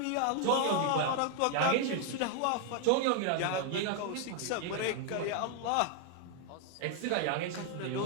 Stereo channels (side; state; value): both; different; correlation 0.00